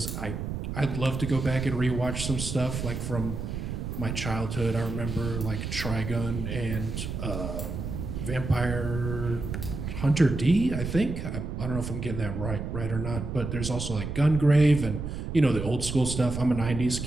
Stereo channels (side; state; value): right; noise; rumble, 5 dB below the sound